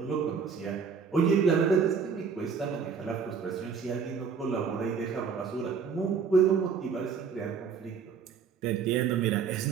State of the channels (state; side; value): quieter; left; 6.1 dB